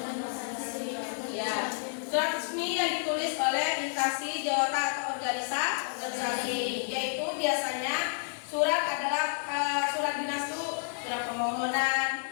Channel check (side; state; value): right; silent; 58 dB below the other